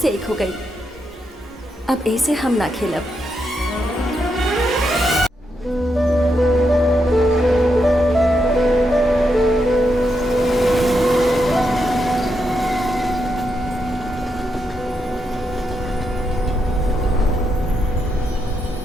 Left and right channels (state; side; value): normal; both; correlation 0.83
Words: एक हो गई। अब ऐसे हम ना खेलब।